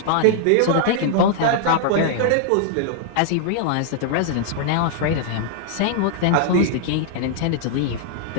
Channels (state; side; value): different; both; correlation -0.01